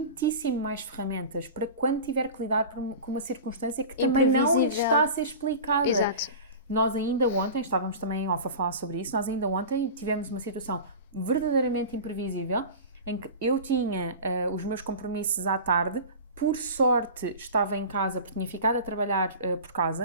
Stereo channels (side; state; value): both; inverted; correlation -0.33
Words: mais ferramentas para quando tiver que lidar com uma circunstância que também não está a ser explicada. Exato. Nós ainda ontem, estávamos também em off a falar sobre isso, nós ainda ontem tivemos uma situação verdadeiramente imprevisível em que eu tinha os meus compromissos à tarde. Por sorte estava em casa, porque tinha ficado a trabalhar por